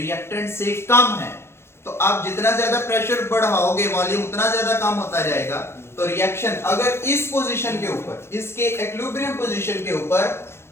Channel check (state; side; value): late; right; 0.12 ms